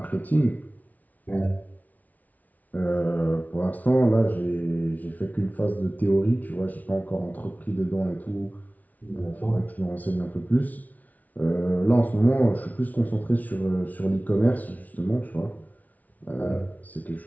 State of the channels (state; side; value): late; right; 0.074 ms